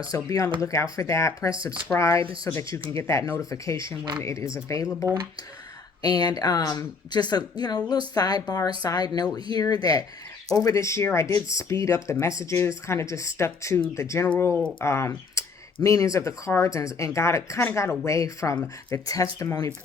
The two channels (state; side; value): quieter; right; 4.7 dB